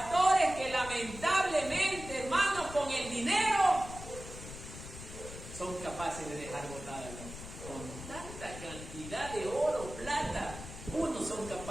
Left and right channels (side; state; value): left; noise; rumble, 12 dB below the sound